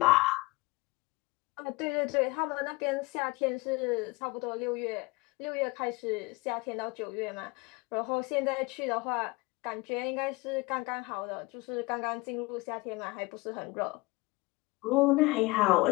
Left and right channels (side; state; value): right; quieter; 23.5 dB